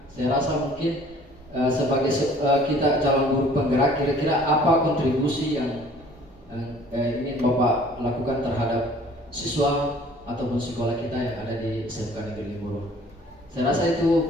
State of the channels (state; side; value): normal; both; correlation 0.53